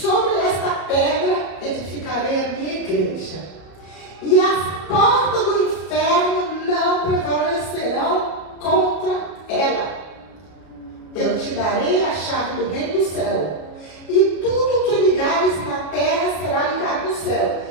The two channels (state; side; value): late; right; 33 ms